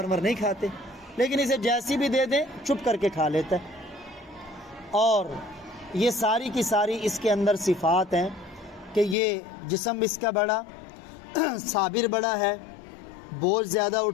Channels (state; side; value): drops out; right; at 9.2 s